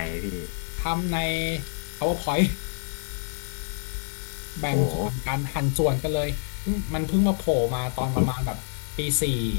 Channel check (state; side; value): silent; right; 56 dB below the other